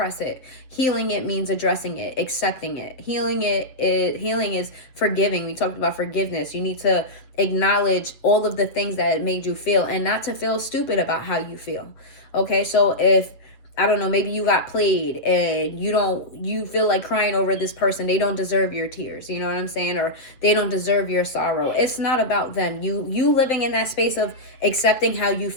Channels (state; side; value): late; right; 7.7 ms